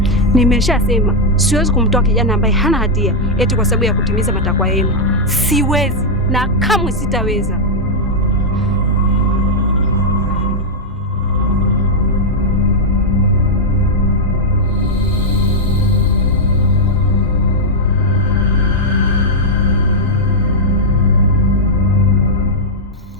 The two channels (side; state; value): both; normal; correlation -0.03